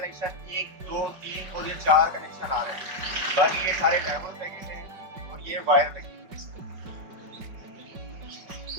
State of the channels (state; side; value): late; left; 5.3 ms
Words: 1, 2, 3 और ये 4 कनेक्शन आ रहे हैं। बाकी ये सारे डायोड लगे हैं और ये वायर लगी है।